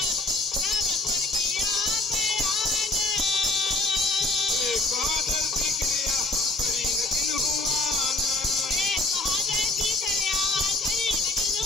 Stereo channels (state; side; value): quieter; right; 3.0 dB